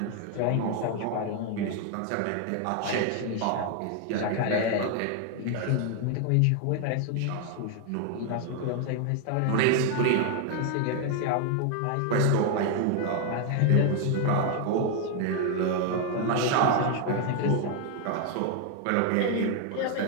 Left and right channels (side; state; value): both; different; correlation 0.01